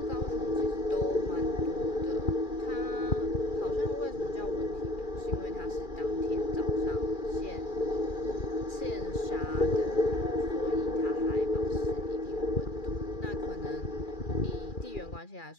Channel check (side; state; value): right; late; 2.4 ms